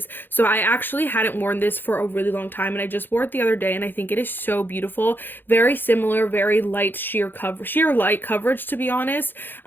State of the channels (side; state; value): right; late; 0.096 ms